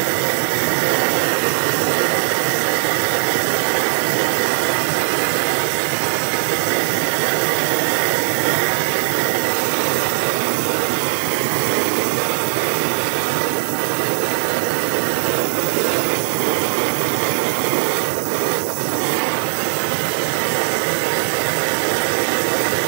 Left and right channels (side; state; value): left; silent; 61 dB below the other